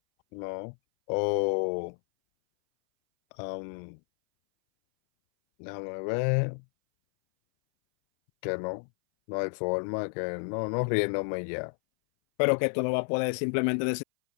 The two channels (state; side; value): silent; right; 58 dB below the other